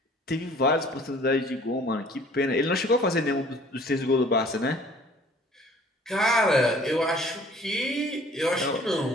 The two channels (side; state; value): both; normal; correlation 0.53